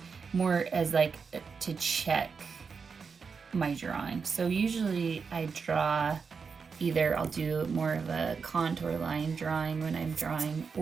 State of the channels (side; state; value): left; quieter; 5.5 dB